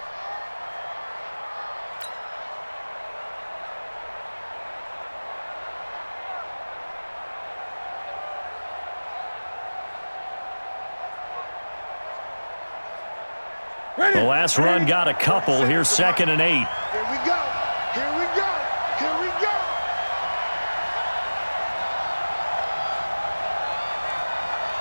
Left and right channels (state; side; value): inverted; both; correlation -1.00